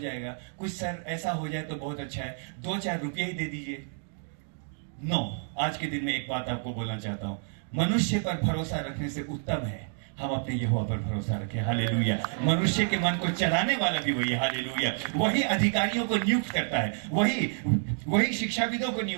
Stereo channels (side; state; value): left; silent; 58 dB below the other